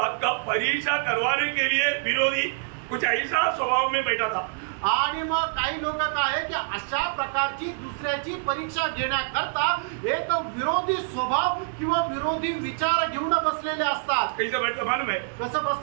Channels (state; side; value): silent; left; digital silence